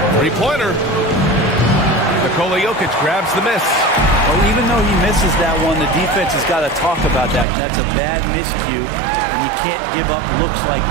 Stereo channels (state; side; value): drops out; left; at 7.5 s